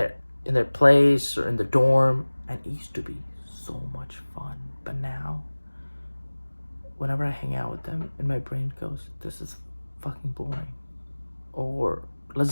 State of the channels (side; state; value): both; inverted; correlation -1.00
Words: place or in the dorm, and it used to be so much fun. But now whenever I hang out with them and my brain goes, this is fucking boring, or